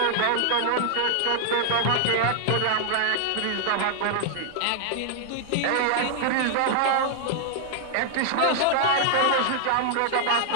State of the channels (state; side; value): different; both; correlation 0.00